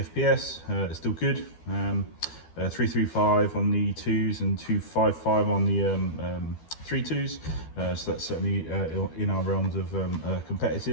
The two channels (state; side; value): late; right; 12 ms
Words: it's still good. 335 on the 2s and 255 on the 3.2s, so that's certainly in our realms of